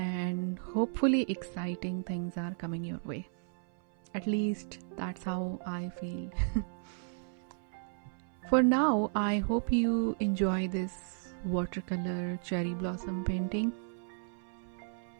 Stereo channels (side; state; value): left; silent; 55 dB below the other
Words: hopefully exciting things are coming your way. At least that's how I feel. For now, I hope you enjoy this watercolor cherry blossom painting.